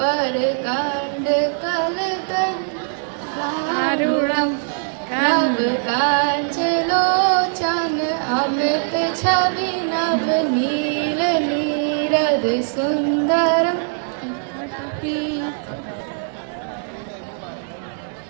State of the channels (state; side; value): silent; left; digital silence